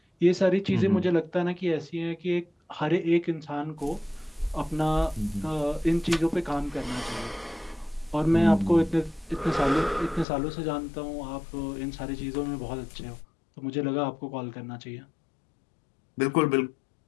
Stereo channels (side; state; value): right; drops out; at 10.2 s